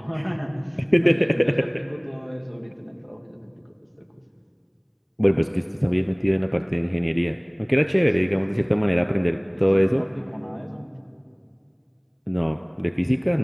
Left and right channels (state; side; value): identical; both; correlation 1.00